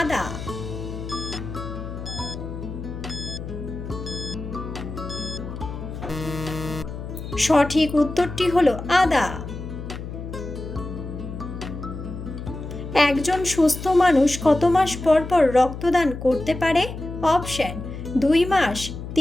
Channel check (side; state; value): left; noise; hum, 9 dB below the sound